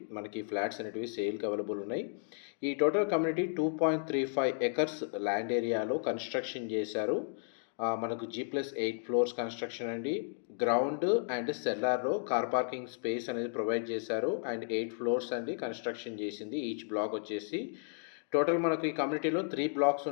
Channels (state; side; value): silent; right; digital silence